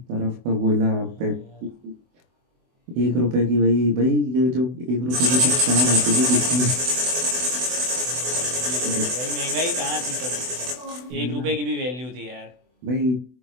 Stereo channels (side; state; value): left; late; 24 ms